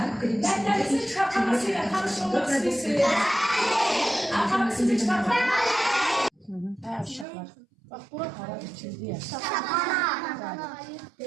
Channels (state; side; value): drops out; left; at 7.2 s